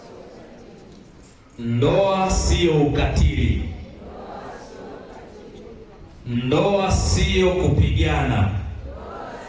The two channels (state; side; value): identical; both; correlation 1.00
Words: Ndoa sio ukatili. Ndoa sio kupigana.